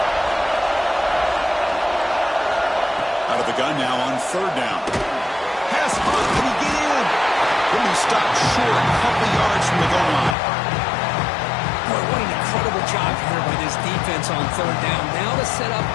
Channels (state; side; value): drops out; right; at 10.4 s